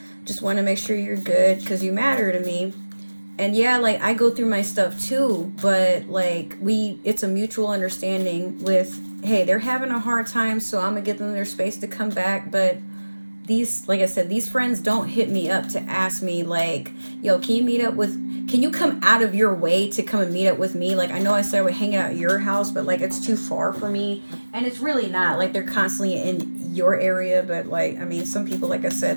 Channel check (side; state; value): both; inverted; correlation -1.00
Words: just want to make sure you're good because you matter to me. And yeah, like, I go through my stuff too, but like, it's a mutual understanding with, hey, they're having a hard time, so I'm gonna give them their space to come back. But these, like I said, these friends don't hit me up to ask me like, yo, can you come out of your way to come and meet up with me? Like, I know I said we're hanging out at your house, but like, it's too far for me. And it's really not. Like, they're constantly in your area, but like, I mean, some people, like I said,